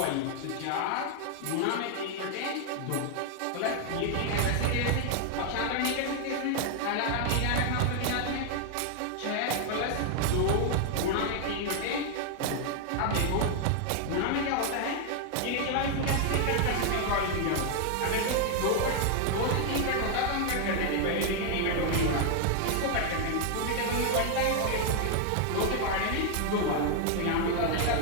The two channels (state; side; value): different; both; correlation 0.00